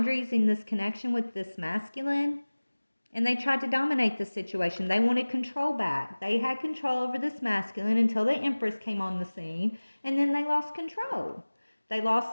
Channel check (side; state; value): both; inverted; correlation -1.00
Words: in this connection with this masculine. And they tried to dominate the situation. They wanted control back. They had control over this masculine until the Empress came on the scene, and then they lost control. They